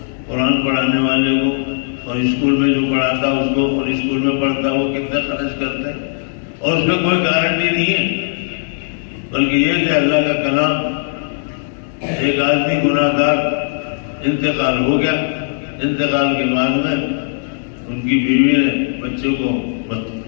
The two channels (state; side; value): silent; right; digital silence